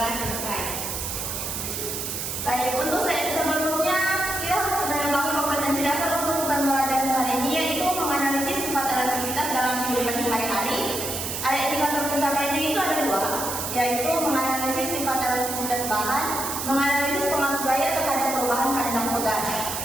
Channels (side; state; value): right; noise; hiss, 4 dB below the sound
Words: selesai. Baik, untuk sebelumnya kita harus mengetahui kompetensi dasar untuk pembelajaran hari ini, yaitu menganalisis sifat elastisitas dalam kehidupan sehari-hari. Ada indikator pencapaiannya itu ada dua, yaitu menganalisis sifat elastisitas bahan, menganalisis pengaruh gaya terhadap perubahan panjang pegas.